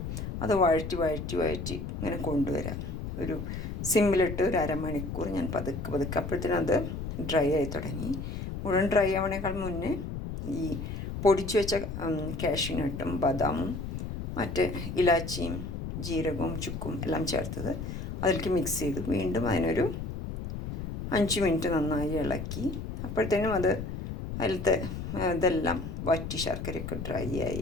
അത് വഴറ്റി ഇങ്ങനെ കൊണ്ടുവരാം. ഒരു സിമ്മിലിട്ട് ഒരു അരമണിക്കൂർ ഞാൻ പതുക്കെ അപ്പോഴത്തേനും അത് ഡ്രൈ ആയി തുടങ്ങി. മുഴുവൻ ഡ്രൈ ആവണേക്കാൾ മുന്നേ ഈ പൊടിച്ചു വെച്ച കാഷ്യൂനട്ടും ബദാമും മറ്റ് ഇലാച്ചിയും ജീരകവും ചുക്കും എല്ലാം ചേർത്തത് അതിലേക്ക് മിക്സ് ചെയ്തു. വീണ്ടും അതിനൊരു 5 മിനിറ്റ് നന്നായി ഇളക്കി. അപ്പോഴത്തേനും അത് അതിലത്തെ ഇതെല്ലാം വറ്റി ശർക്കരയൊക്കെ ഡ്രൈ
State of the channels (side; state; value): left; noise; rumble, 6 dB below the sound